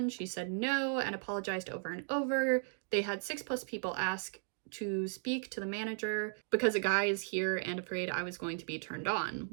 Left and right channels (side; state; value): left; silent; 54 dB below the other